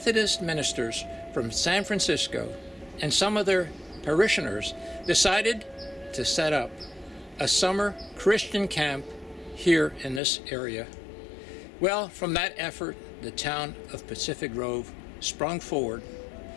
ministers from San Francisco and some of their parishioners decided to set up a summer Christian camp here in this area. Well, from that effort, the town of Pacific Grove sprung forward.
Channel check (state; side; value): drops out; right; at 10.2 s